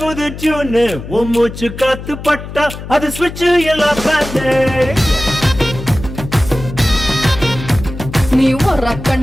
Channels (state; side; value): noise; left; hum, 11 dB below the sound